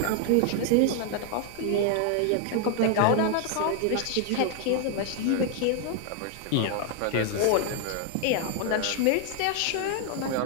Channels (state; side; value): different; both; correlation 0.00